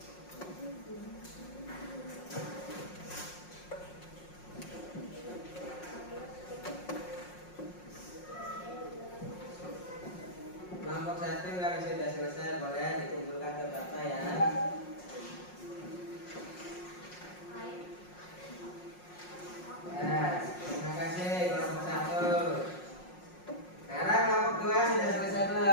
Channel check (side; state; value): right; late; 5.5 ms